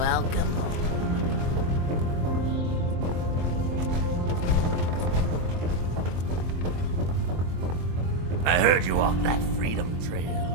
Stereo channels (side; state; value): left; late; 23 ms